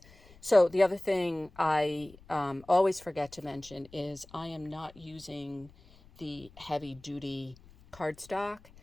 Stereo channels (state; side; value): noise; left; rumble, 24 dB below the sound